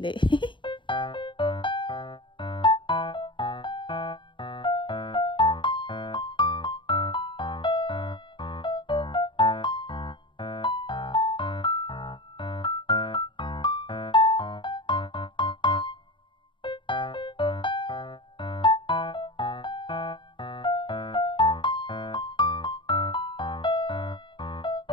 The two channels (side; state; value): right; late; 0.23 ms